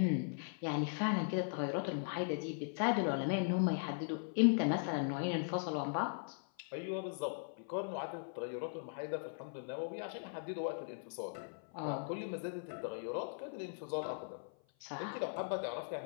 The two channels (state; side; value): silent; right; 52 dB below the other